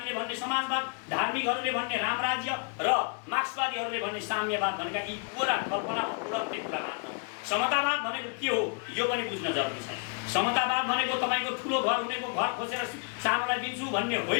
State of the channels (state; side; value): quieter; right; 38.6 dB